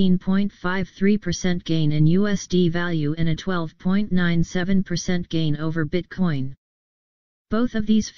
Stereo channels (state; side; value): identical; both; correlation 1.00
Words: gain in USD value and a 12.97% gain over Bitcoin. Both of these